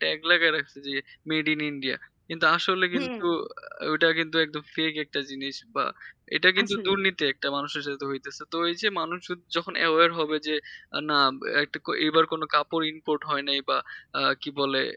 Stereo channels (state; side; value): identical; both; correlation 1.00